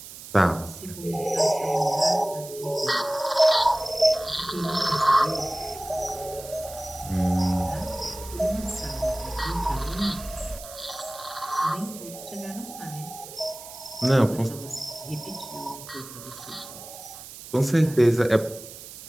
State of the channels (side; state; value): right; noise; hiss, 14 dB below the sound